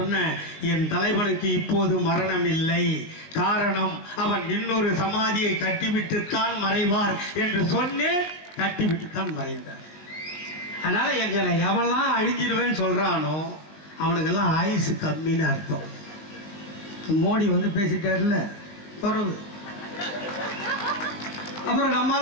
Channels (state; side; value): late; right; 20 ms